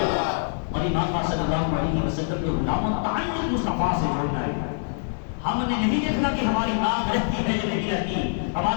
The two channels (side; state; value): right; silent; digital silence